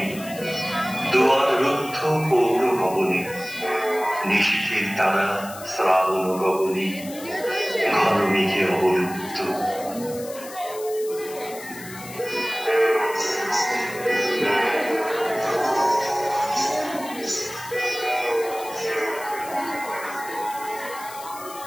দুয়ার রুদ্ধ পৌর ভবনে, নিশীথের তারা শ্রাবণ গগনে, ঘন মেঘে অবলুপ্ত।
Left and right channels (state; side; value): noise; left; hiss, 15 dB below the sound